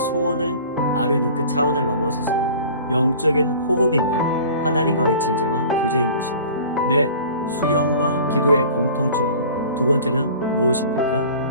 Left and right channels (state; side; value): inverted; both; correlation -0.44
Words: 아뢰는 그 차원을 넘어서서 영적인 호흡이며 하나님과의 진정한 교제인 것입니다. 네, 수영과 기도의 공통점 두 번째는